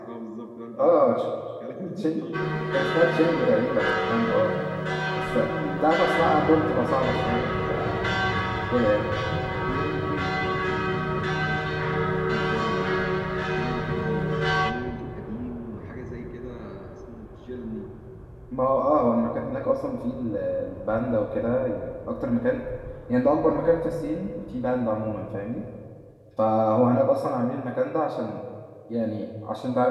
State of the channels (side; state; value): both; identical; correlation 1.00